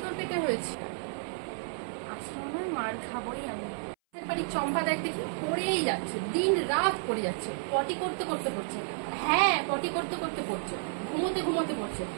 তোর পেটে হয়েছি? আসলে মার খাবোই আমি। বাড়ির চম্পা দেখ দেখি পড়েই যাচ্ছে, দিন রাত পড়ে যাচ্ছে। পটি করতে করতে পড়ছে। হ্যাঁ, পটি করতে করতে পড়ছে, ঘুমোতে ঘুমোতে পড়ছে,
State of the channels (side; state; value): left; silent; 57 dB below the other